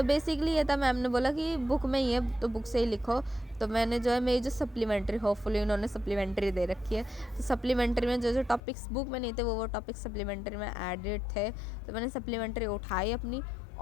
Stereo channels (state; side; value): drops out; right; at 8.6 s